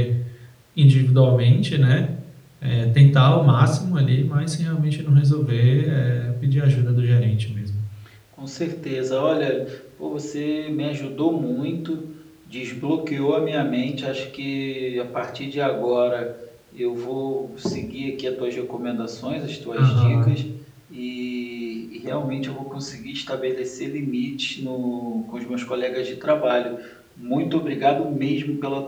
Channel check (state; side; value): identical; both; correlation 1.00